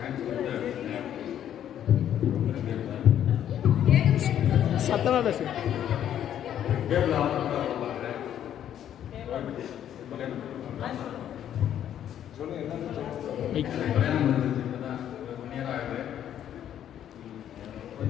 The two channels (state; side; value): quieter; right; 10.4 dB